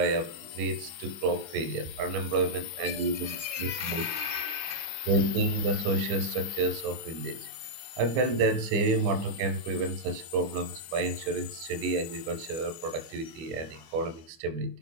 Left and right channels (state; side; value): late; left; 24 ms